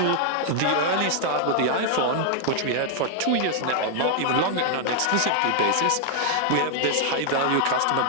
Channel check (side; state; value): both; different; correlation 0.00